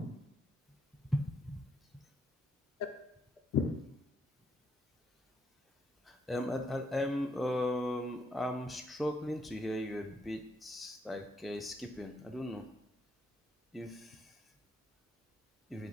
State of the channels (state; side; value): normal; both; correlation 0.75